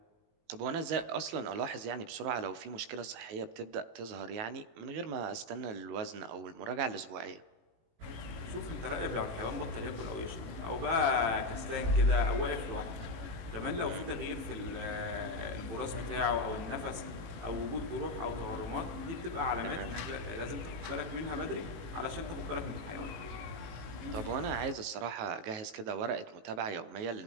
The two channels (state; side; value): late; left; 18 ms